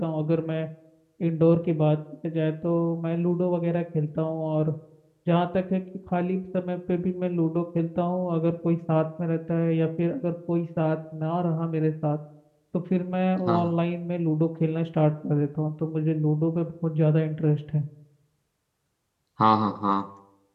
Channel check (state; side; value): identical; both; correlation 1.00